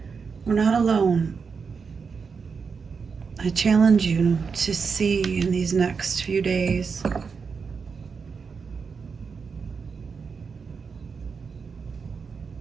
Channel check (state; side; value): quieter; left; 5.5 dB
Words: We're not alone. I challenge you to see in these next few days